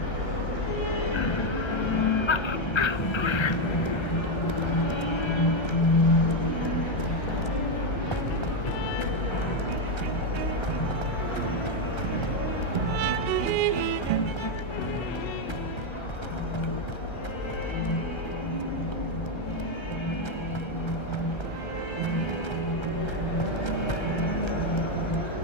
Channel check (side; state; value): right; late; 1.3 ms